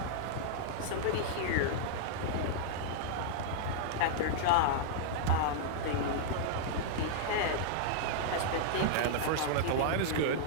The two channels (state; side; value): different; both; correlation -0.02